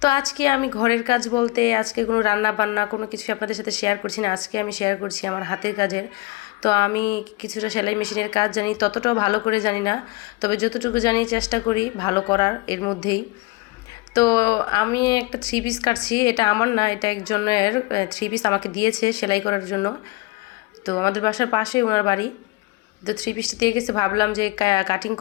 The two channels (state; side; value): quieter; right; 24.1 dB